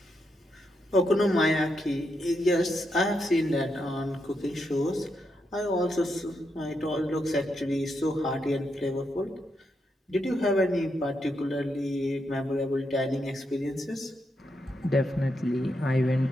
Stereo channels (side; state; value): both; normal; correlation 0.82